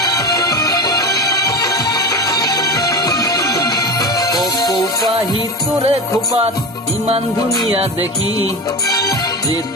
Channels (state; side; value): normal; both; correlation 0.26